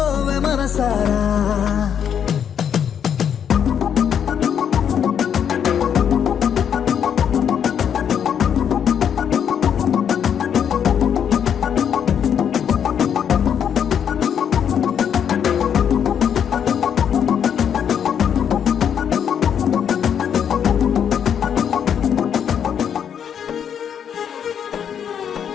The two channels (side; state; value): right; quieter; 8.4 dB